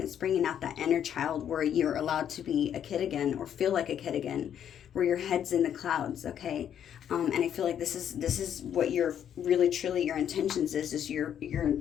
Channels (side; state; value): right; quieter; 9.4 dB